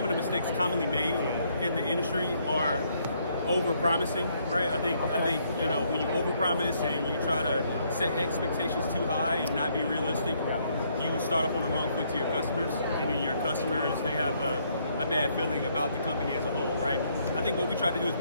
of the mistakes commonly made in the industry are over-promising, right? I think you know, when you over-promise and you try to set expectations too high and not be realistic, you start off on the wrong foot to your customers, and then your customers, they have a bad feeling about the company as a whole, right? I think what we try to do is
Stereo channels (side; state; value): both; inverted; correlation -0.70